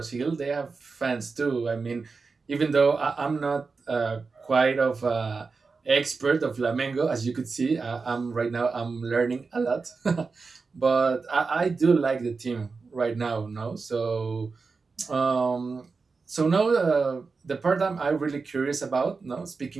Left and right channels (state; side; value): quieter; left; 4.5 dB